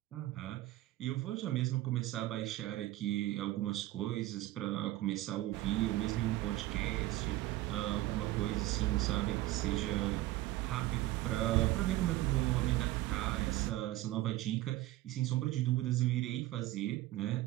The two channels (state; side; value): quieter; left; 16.7 dB